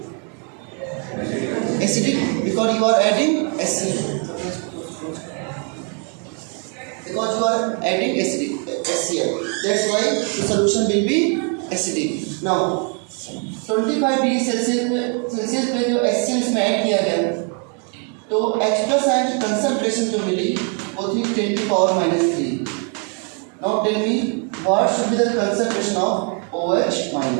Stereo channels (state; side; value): quieter; left; 39.0 dB